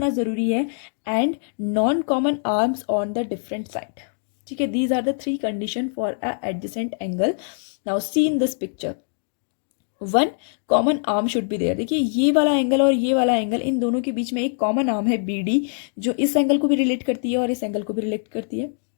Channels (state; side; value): silent; right; digital silence